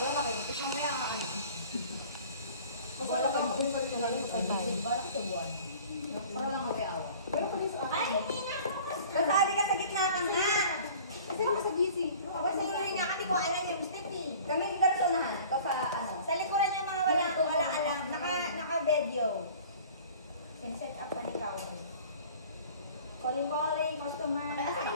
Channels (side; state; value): both; inverted; correlation -0.46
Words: kayo. Ito mamaya ano. Wala kayo. Wala kayo sa buwan. Para lang mawiawa. Ay, hindi nga ako. Kasabi ka sa gitna ka nga. Kasi ako sa busy. Kasi nga kasi ko alam yung stick eh. Kami dalasonahan. Ito sa ano. Sa likuran niya mga wala alam. Naka-video. Pin-set up pa ni Kaori. Calling, customer.